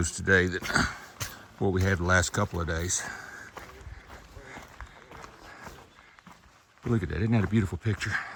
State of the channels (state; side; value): identical; both; correlation 1.00